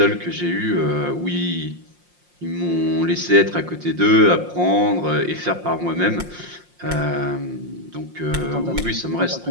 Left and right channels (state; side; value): late; left; 5.7 ms